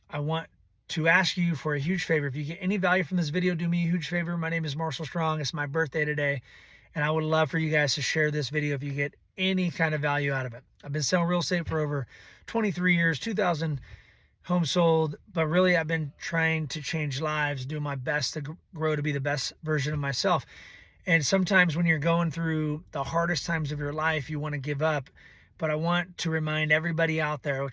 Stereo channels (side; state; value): both; identical; correlation 1.00